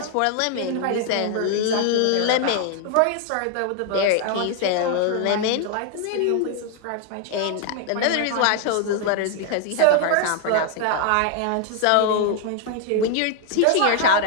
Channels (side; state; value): both; different; correlation 0.00